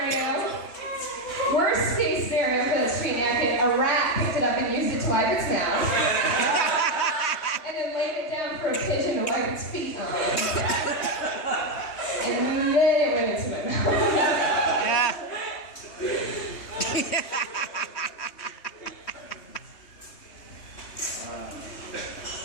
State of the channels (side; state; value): right; late; 3.2 ms